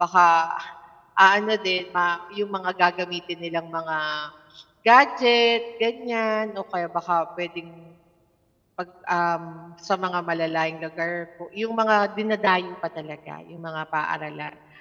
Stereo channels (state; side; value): identical; both; correlation 1.00